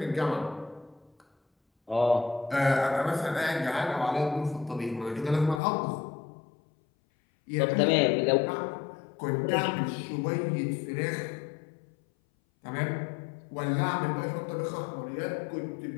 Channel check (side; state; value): right; drops out; at 5.6 s